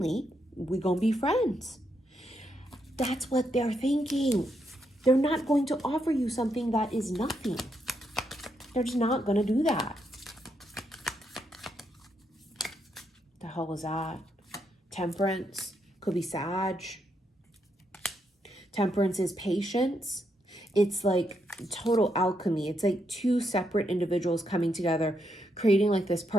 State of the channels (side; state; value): both; normal; correlation 0.80